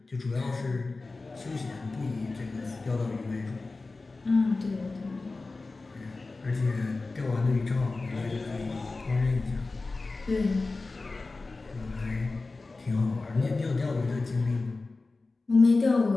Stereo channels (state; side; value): quieter; right; 3.6 dB